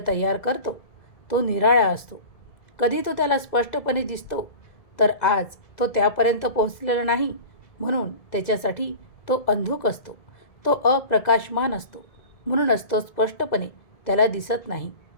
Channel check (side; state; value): right; late; 1.9 ms